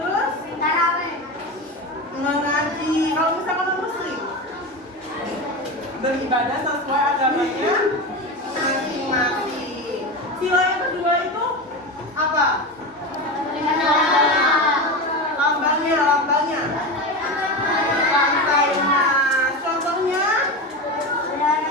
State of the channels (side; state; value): both; normal; correlation 0.22